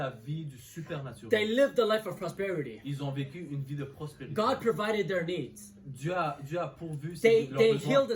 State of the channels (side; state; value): both; identical; correlation 1.00